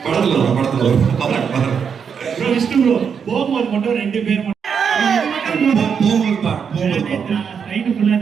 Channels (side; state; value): left; quieter; 6.8 dB